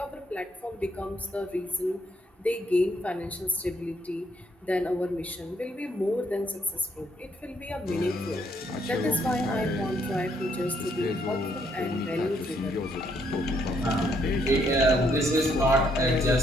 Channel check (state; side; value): normal; both; correlation 0.71